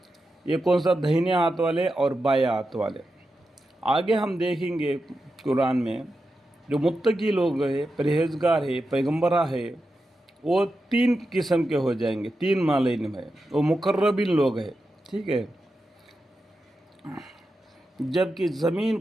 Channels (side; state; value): both; normal; correlation 0.89